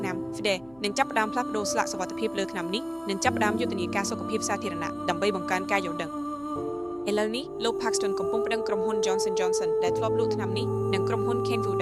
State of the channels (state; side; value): noise; left; hum, 28 dB below the sound